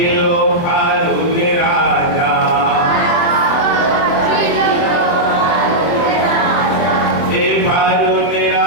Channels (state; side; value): late; right; 24 ms